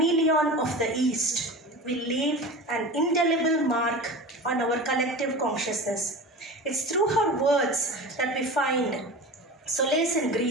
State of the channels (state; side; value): normal; both; correlation 0.32